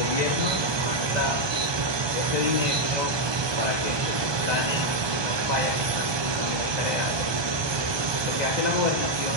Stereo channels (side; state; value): left; late; 1.2 ms